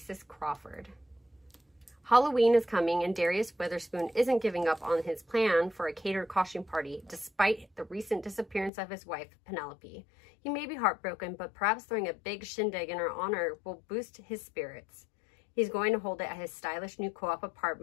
Crawford. Halloween is coming, and Darius Witherspoon isn't giving up on his plan for a catered costume party, despite the recent disappearance of his wife, Penelope. He may be heartbroken, but perhaps throwing a big shindig in her honor will boost his spirits. He's going to hold it at his stylish new co-op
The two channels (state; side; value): drops out; right; at 8.7 s